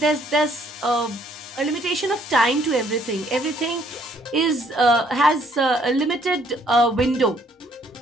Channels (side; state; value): both; normal; correlation 0.65